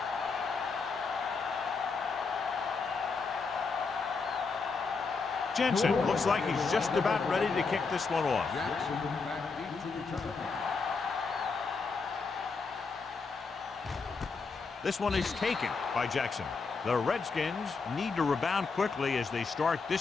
Jensen looks like he's just about ready to kick this one off. Jackson back deep to return. This one is taken by Jackson. The Redskins need to rebound quickly as they start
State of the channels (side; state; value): right; quieter; 4.6 dB